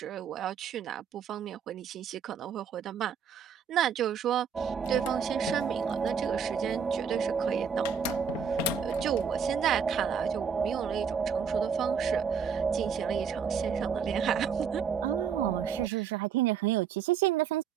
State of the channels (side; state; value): left; quieter; 6.9 dB